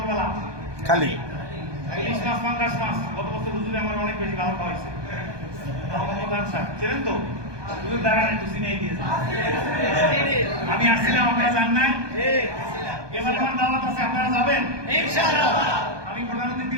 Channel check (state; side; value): late; left; 1.2 ms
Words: খালি ইলিশ মাছ পাঙ্গাস মাছ গত বছর হুজুরে আমার অনেক বেশি ভালো খাওয়াইছে মোহাম্মদ স্যার চেনেন তো হুজুর দাঁড়ান একটু চিনেই দিয়েছে আমি আসছিলাম আপনারা জান নাই এবার আমার দাওয়াত আছে আপনারা যাবেন ইনশাআল্লাহ আমি